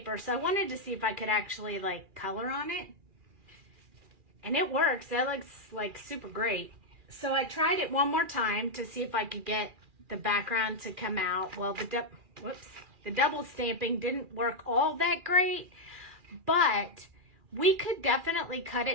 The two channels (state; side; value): late; left; 2.4 ms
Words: so I wanted to see if I could actually like color on it. And it works. That looks like super great. So I tried it one more time to see if I could get the background to come out. Well, the double stamping didn't work all that great, but we could definitely cut